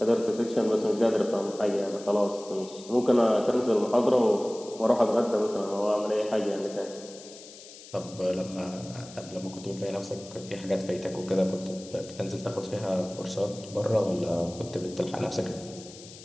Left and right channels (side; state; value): left; noise; hiss, 17 dB below the sound